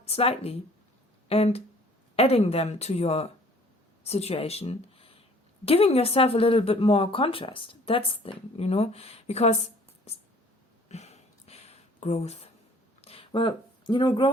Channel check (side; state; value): both; normal; correlation 0.54